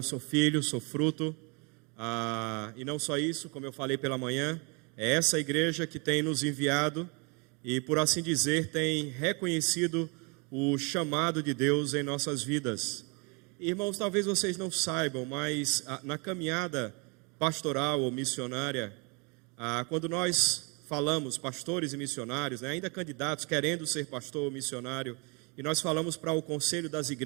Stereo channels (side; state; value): left; quieter; 32.3 dB